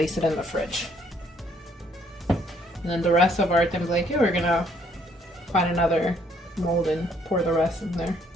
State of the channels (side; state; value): both; normal; correlation 0.66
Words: it in the fridge. And then the rest of our tembleque, we're gonna find another mold and pour the rest in there.